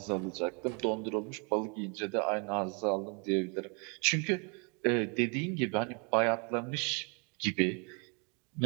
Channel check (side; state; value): left; quieter; 34.7 dB